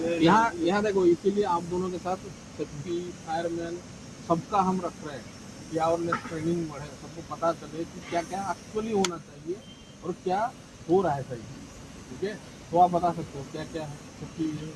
यहाँ यहाँ देखो, इसीलिए आप दोनों के साथ सेफ्टी फायरमैन सबका हम रख रहे हैं कि अवेयरनेस ट्रेनिंग बढ़े, सबको पता चले कि क्या क्या एक्चुअली होना चाहिए और क्या हो रहा है सही। ठीक है, तो आप बता सकते हो क्या क्या है सेफ्टी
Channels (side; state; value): both; identical; correlation 1.00